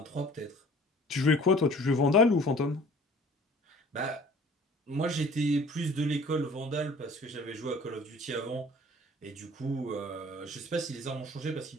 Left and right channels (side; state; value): both; normal; correlation 0.49